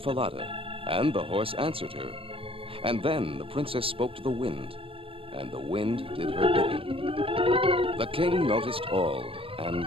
and the horse answered her. And then the princess spoke to the wind, and the wind did her bidding. The king noticed all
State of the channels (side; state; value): left; late; 0.26 ms